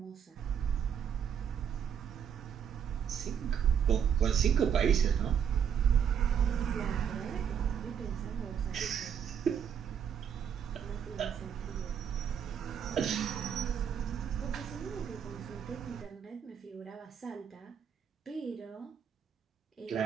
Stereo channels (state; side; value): quieter; left; 8.1 dB